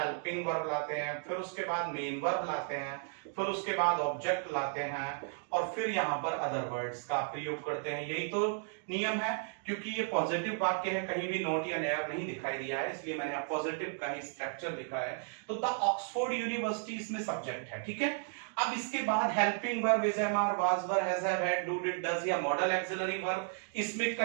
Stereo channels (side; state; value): left; silent; 55 dB below the other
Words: वर्ब लाते हैं, फिर उसके बाद मेन वर्ब लाते हैं, फिर उसके बाद ऑब्जेक्ट लाते हैं, और फिर यहां पर अदर वर्ड्स का प्रयोग करते हैं। यही तो नियम है। क्योंकि ये पॉजिटिव वाक्य है, कहीं भी नॉट या नेयर नहीं दिखाई दिया है, इसलिए मैंने पॉजिटिव का ही स्ट्रक्चर लिखा है। तो द ऑक्सफोर्ड यूनिवर्सिटी इसमें सब्जेक्ट है, ठीक है। अब इसके बाद helping verb is am are, was were, has have, had, do, did, does या मॉडल एक्सिलरी वर्ब इसमें